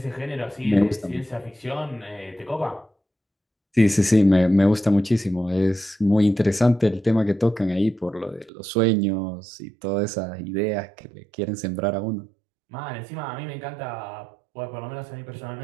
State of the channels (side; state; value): left; drops out; at 8.5 s